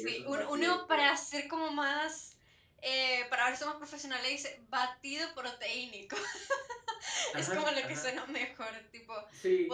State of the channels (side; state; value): both; identical; correlation 1.00